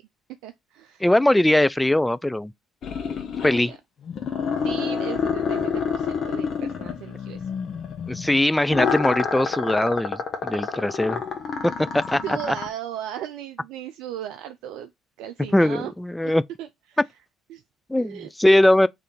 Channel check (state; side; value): normal; both; correlation 0.93